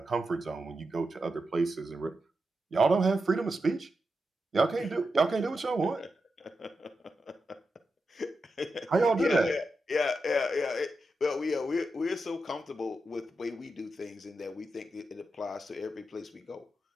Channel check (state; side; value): normal; both; correlation 0.88